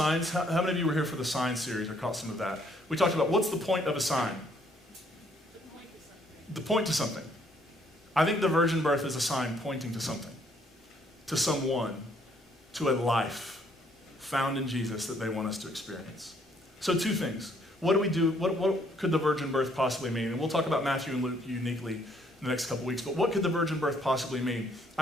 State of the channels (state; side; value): normal; both; correlation 0.67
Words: How many of you were here for the sign series or caught some of that? We talked about what's the point of a sign? The point to something. I think the virgin birth is a sign pointing to something, to someone, to a life found in Jesus that they want us to experience. So two things. What do we do? What could the virgin birth possibly mean? And we'll talk about Matthew and Luke uniquely in the next couple weeks, but what could the virgin birth possibly mean?